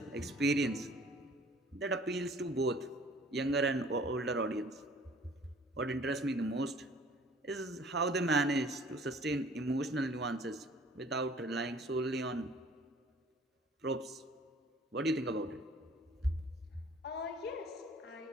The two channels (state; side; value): normal; both; correlation 0.53